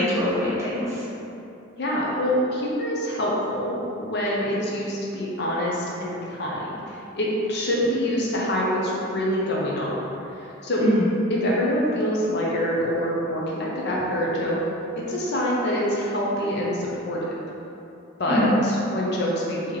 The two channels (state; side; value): normal; both; correlation 0.30